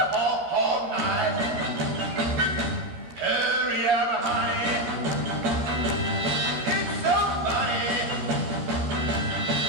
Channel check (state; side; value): late; left; 13 ms